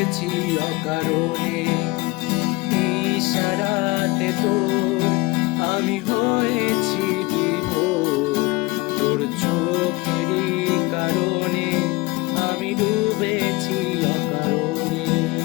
অকারণে। ইশারাতে তোর আমি হয়েছি বিভোর, তোর চোখেরই কারণে আমি ডুবেছি অকারণে।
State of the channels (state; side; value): quieter; right; 23.6 dB